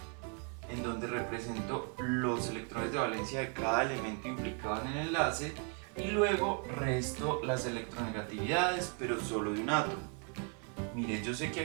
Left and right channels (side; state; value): left; quieter; 39.3 dB